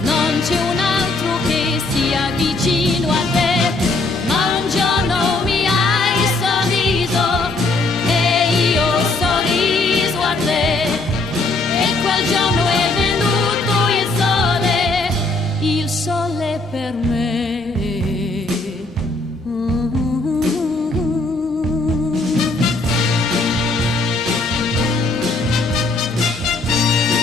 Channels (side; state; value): right; quieter; 3.2 dB